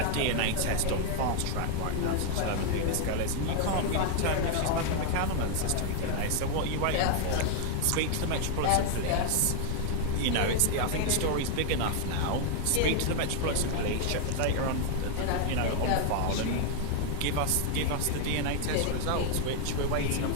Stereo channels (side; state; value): both; different; correlation 0.00